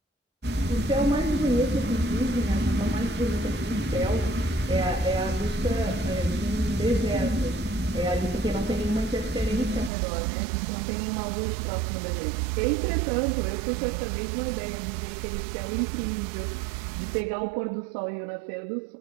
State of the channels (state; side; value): drops out; left; at 9.9 s